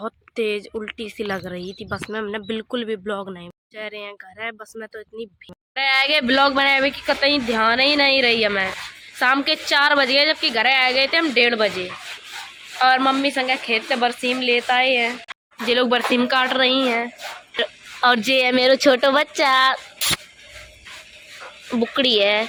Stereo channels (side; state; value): both; identical; correlation 1.00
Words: तेज उल्टी सी लग रही थी बस में। हमने बिल्कुल भी ब्लॉग नहीं। जा रहे हैं घर है। बस में तो इतनी भीड़ आगे ब्लॉग बनाए हुए कि कतई ध्यान ही नहीं रही है। मैं शाम के 4 बज गए, जबकि घर आ गए थे हम 1:30 बजे। और मम्मी संगे खेत से बरसीम लेता ही है। जे लोग बरसीम काट रही हैं। और जे है मेरा छोटा बच्चा, बुकड़ी है।